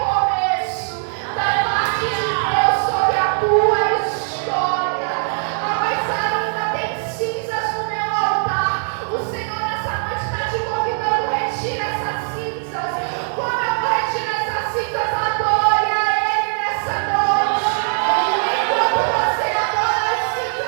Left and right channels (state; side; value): silent; left; digital silence